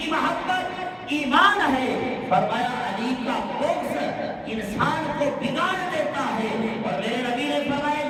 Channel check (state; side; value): identical; both; correlation 1.00